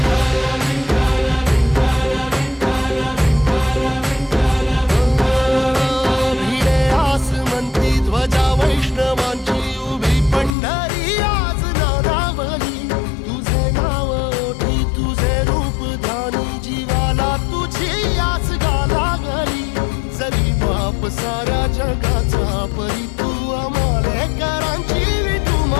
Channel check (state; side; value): drops out; right; at 10.5 s